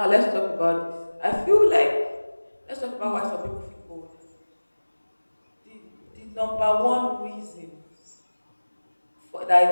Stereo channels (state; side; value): inverted; both; correlation -1.00